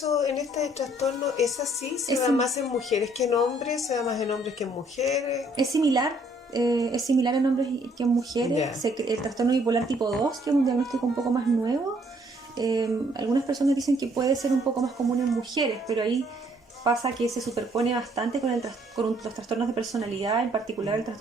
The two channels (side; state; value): both; normal; correlation 0.65